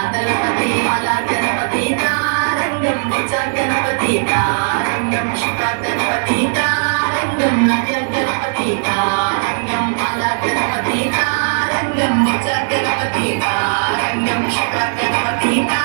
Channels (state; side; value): silent; left; 68 dB below the other